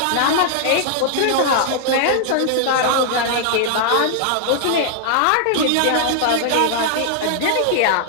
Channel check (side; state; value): both; different; correlation 0.00